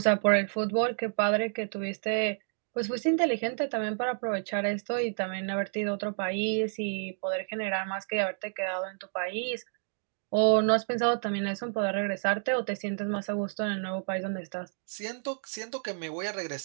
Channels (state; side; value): silent; left; digital silence